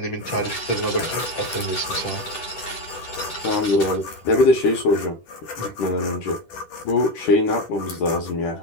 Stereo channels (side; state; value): right; late; 10 ms